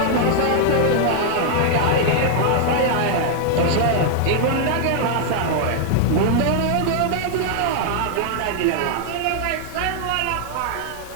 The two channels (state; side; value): different; both; correlation 0.00